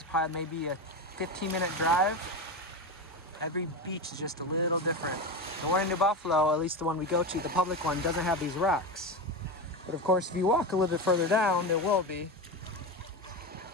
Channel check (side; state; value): both; normal; correlation 0.19